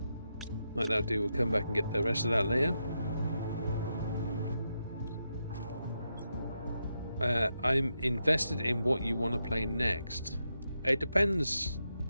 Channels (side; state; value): both; inverted; correlation -0.85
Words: Like that do, we'll come back and get the rest of that later. I'm invested in what you want to play next. It depends